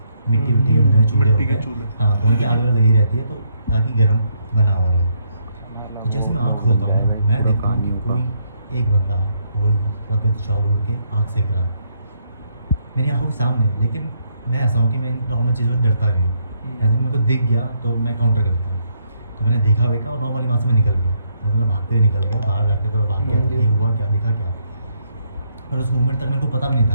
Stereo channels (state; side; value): inverted; both; correlation -0.74